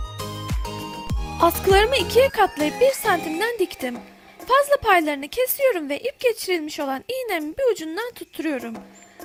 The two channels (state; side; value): identical; both; correlation 1.00